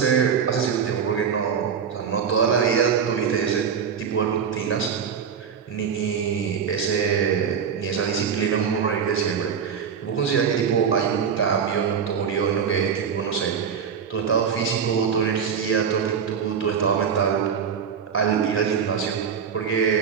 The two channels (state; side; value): quieter; left; 7.1 dB